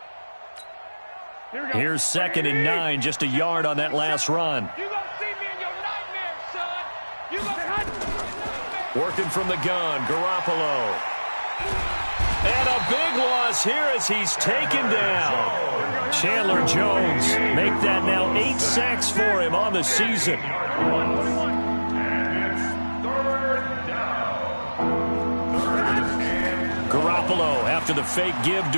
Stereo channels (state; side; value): inverted; both; correlation -1.00